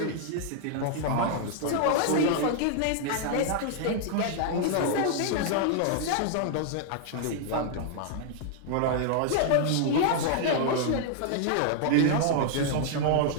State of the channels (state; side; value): different; both; correlation -0.01